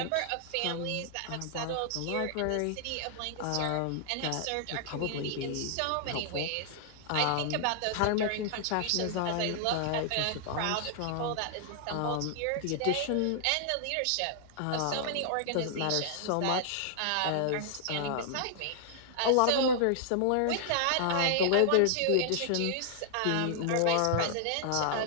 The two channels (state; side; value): different; both; correlation -0.01